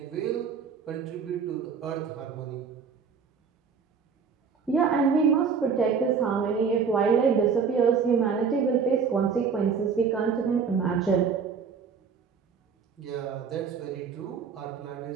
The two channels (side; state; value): left; quieter; 6.1 dB